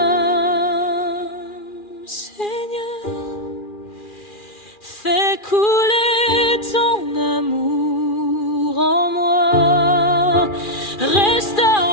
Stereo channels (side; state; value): right; late; 2.4 ms